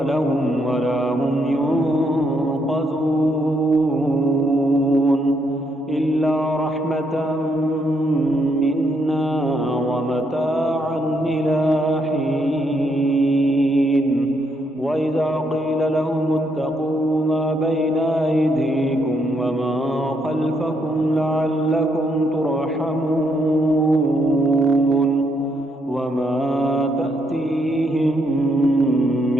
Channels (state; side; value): normal; both; correlation 0.76